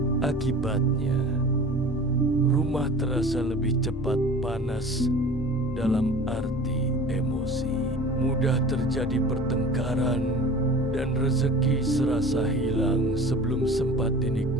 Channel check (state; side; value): normal; both; correlation 0.40